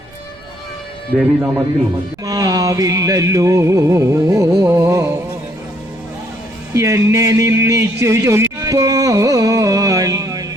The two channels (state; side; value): noise; right; rumble, 28 dB below the sound